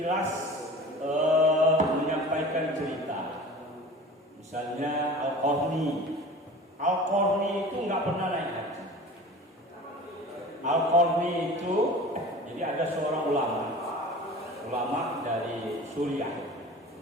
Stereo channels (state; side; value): normal; both; correlation 0.39